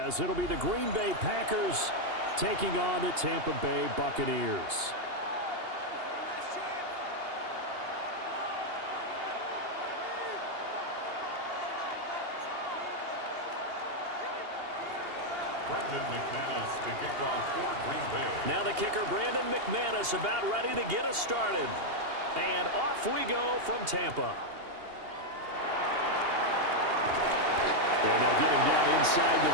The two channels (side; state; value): left; late; 2.8 ms